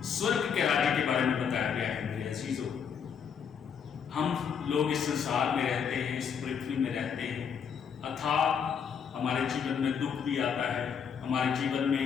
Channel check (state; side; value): quieter; right; 7.1 dB